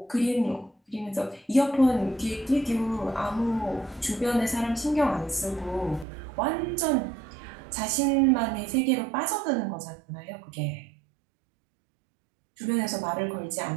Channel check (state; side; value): drops out; left; at 6.1 s